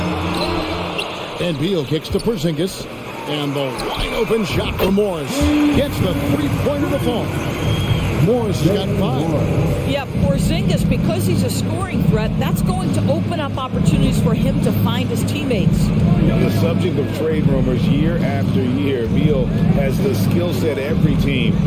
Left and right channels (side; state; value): both; identical; correlation 1.00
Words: And Beal kicks to Porzingis. And the wide open shot for Morris. Gets the three-pointer to fall. Morris has got 5. Yeah, Porzingis, because he's a scoring threat, that's going to open up opportunities for him to find his teammates. The subject of trade rumors year after year, Beal has the skill set every team